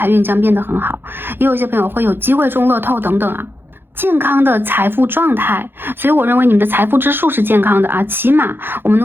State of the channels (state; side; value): late; left; 0.10 ms